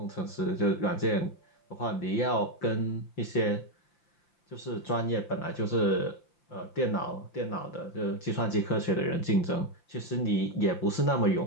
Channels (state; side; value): late; right; 5.8 ms